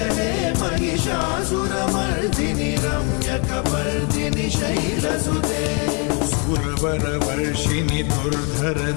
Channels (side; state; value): right; quieter; 35.1 dB